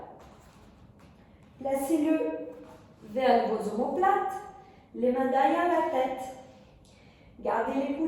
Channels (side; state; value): both; identical; correlation 1.00